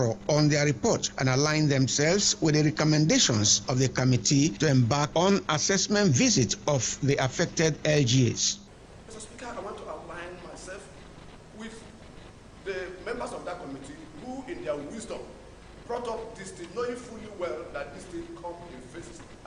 on their report and aligned themselves with the recommendations of the committee to embark on assessment visit of the affected LGAs. Mr. Speaker, I want to align myself with the members of that committee who, in their wisdom, brought up this thing, knowing fully well that this thing come in phases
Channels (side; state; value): both; identical; correlation 1.00